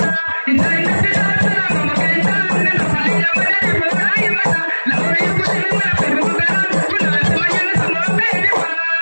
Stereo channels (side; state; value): both; inverted; correlation -1.00